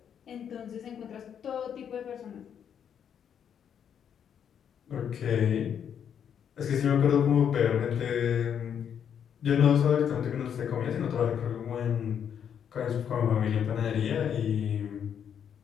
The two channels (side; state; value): right; quieter; 8.4 dB